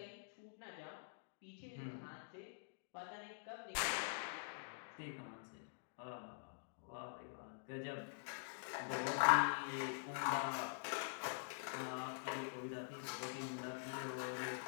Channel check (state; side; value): silent; right; digital silence